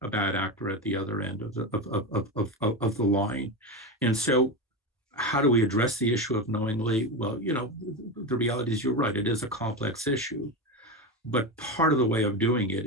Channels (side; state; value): both; normal; correlation 0.18